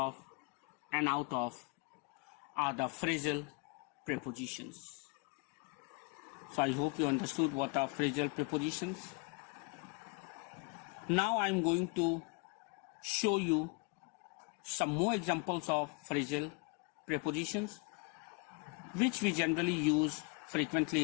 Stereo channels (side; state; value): right; quieter; 30.3 dB